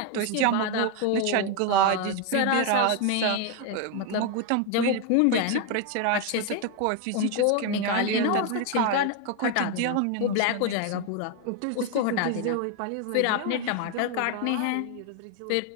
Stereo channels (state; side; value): different; both; correlation 0.01